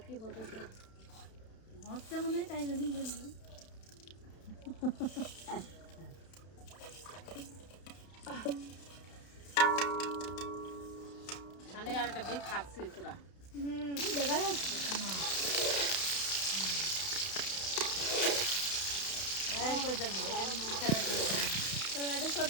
কি বলতে হচ্ছে মনে হয় তাই জন্যই বললি তাহলে আর একটা বিয়ে খাচ্ছি তোরা। দেখা যাচ্ছে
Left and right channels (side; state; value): right; late; 31 ms